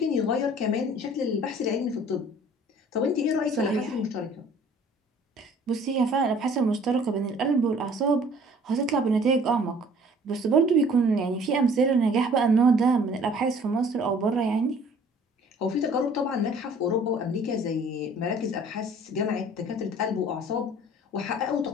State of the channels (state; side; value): normal; both; correlation 0.53